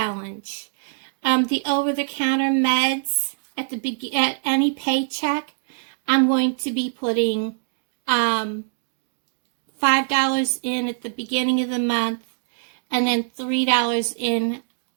The over-the-counter meds at any paycheck, I'm going to be putting $5 in at the beginning of the month, and then $3 in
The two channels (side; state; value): left; silent; digital silence